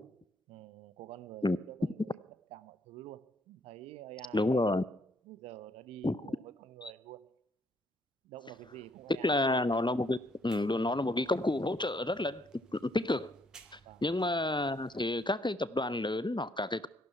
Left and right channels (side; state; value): both; normal; correlation 0.69